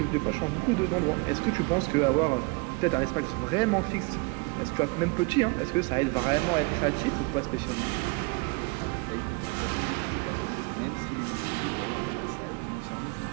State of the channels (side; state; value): left; quieter; 28.6 dB